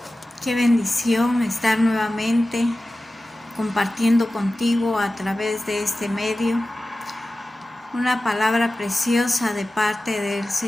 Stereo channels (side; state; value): both; normal; correlation 0.95